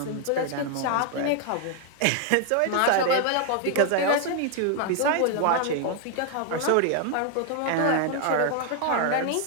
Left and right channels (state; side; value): different; both; correlation 0.00